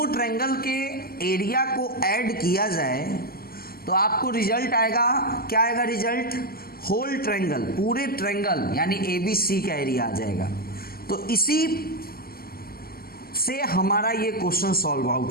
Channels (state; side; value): late; right; 0.43 ms